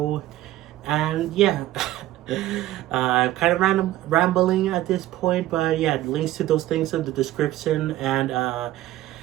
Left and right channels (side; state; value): left; quieter; 14.9 dB